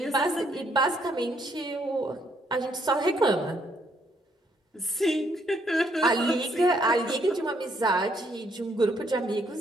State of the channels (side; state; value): both; normal; correlation 0.70